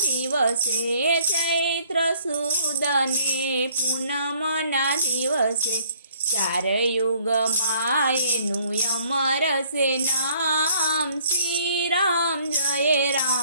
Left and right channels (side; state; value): both; inverted; correlation -0.61